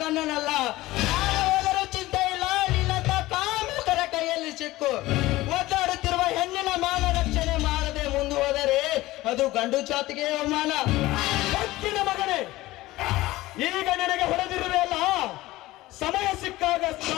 ಹೋದರೂ ಚಿಂತೆ ಇಲ್ಲ, ನಿನ್ನಂತ ಕಾಮುಕರ ಕೈಯಲ್ಲಿ ಸಿಕ್ಕು. ಒದ್ದಾಡುತ್ತಿರುವ ಹೆಣ್ಣಿನ ಮಾನ ರಕ್ಷಣೆ ಮಾಡದೆ ಮುಂದುವರೆದರೆ ಅದು ಗಂಡು ಜಾತಿಗೆ ಅವಮಾನ. ಕತ್ತಿನ ಮಗನೇ, ಈಗ ನನಗೆ ಹೊಡೆದಿರುವೆ ಅಲ್ಲ, ಸಮಯ ಸಿಕ್ಕಾಗ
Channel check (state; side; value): quieter; right; 18.0 dB